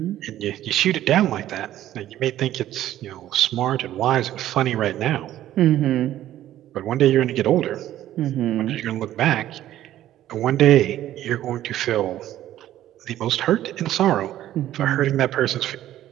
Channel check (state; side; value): quieter; left; 13.0 dB